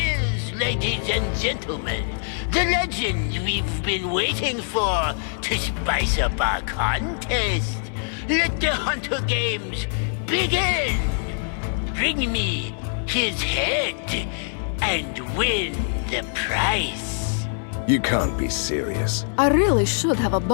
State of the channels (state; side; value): silent; right; 63 dB below the other